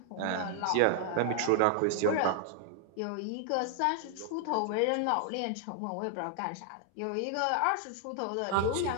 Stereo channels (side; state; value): both; different; correlation 0.00